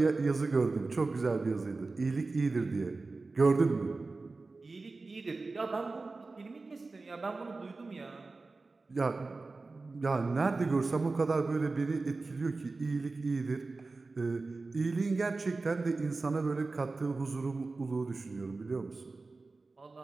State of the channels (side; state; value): left; quieter; 3.7 dB